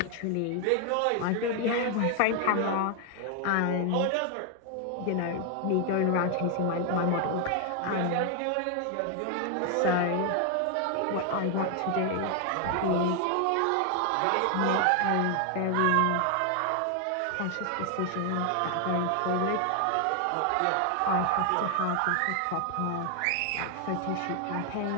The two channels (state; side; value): different; both; correlation 0.00